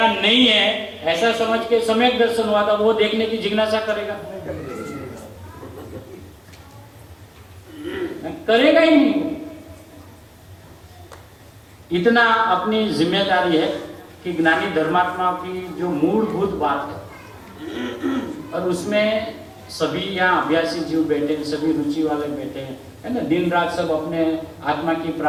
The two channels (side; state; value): both; identical; correlation 1.00